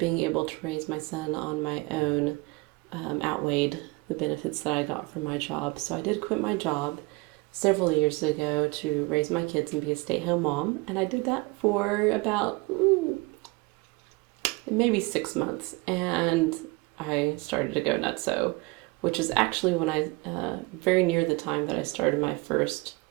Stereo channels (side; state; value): left; quieter; 25.3 dB